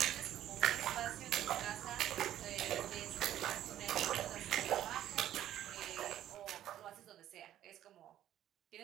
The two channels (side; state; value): left; quieter; 12.0 dB